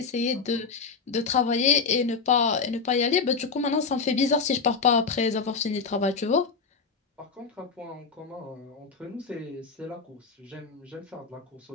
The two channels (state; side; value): quieter; right; 5.0 dB